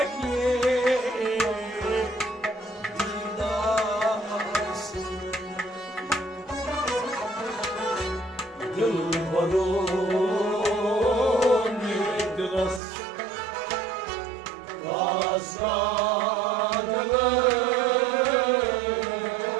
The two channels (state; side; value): drops out; left; at 12.8 s